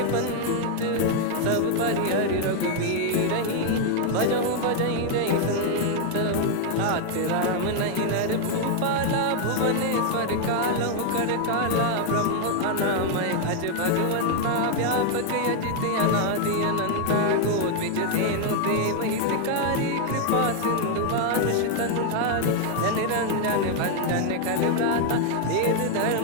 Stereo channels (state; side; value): different; both; correlation 0.00